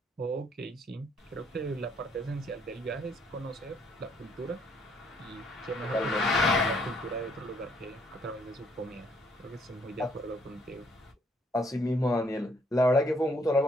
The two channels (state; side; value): normal; both; correlation 0.68